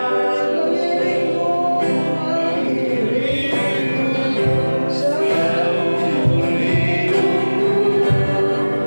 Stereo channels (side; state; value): both; inverted; correlation -1.00